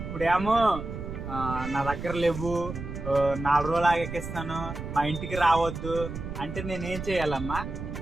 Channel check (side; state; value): right; noise; rumble, 8 dB below the sound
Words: ఇప్పుడేమో నా దగ్గర లేవు, 4 రోజులు ఆగేకిస్తాను, మా ఇంటికి రావద్దు అంటే నేనేం చేయాలమ్మా?